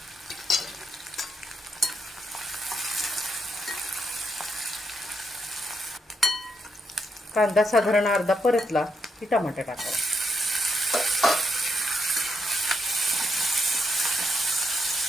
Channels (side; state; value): both; normal; correlation 0.79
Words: कांदा साधारण अर्धा परतला की टमाटा टाकायचा।